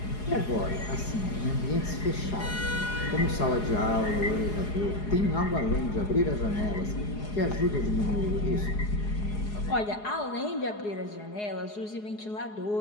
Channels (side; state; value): right; late; 4.8 ms